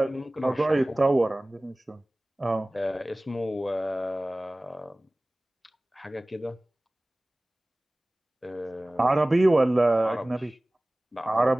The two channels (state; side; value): normal; both; correlation 0.98